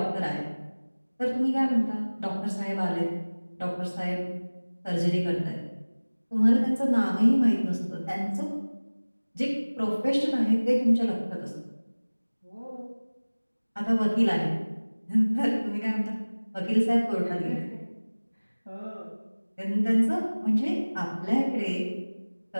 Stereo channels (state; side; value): inverted; both; correlation -1.00